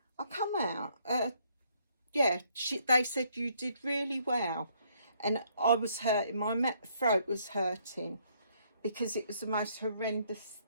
I come out. Yeah, they said you did really well. And I was hurting, my throat was hurting, because it was the most horrendous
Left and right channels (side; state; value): both; inverted; correlation -0.68